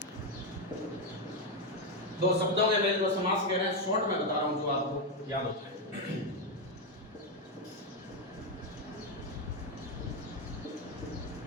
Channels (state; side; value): normal; both; correlation 0.06